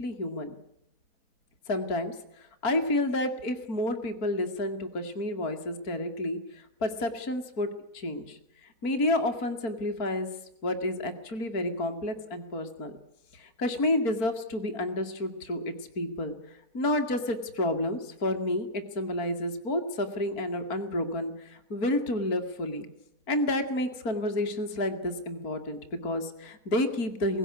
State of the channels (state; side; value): late; right; 4.4 ms